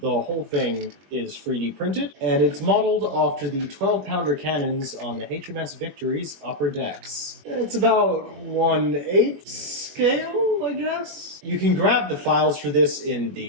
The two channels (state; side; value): late; left; 21 ms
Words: whole thing is 3D printed, and it's modeled after the 12-pounder cannons on the HMS Victory's upper decks. It's about 1/8 scale, I guess? You can grab the files for this in